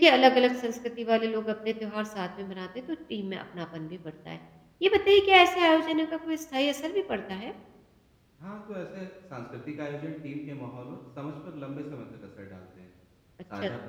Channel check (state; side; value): identical; both; correlation 1.00